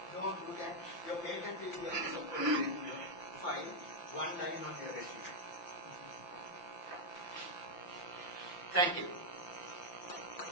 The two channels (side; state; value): right; late; 5.8 ms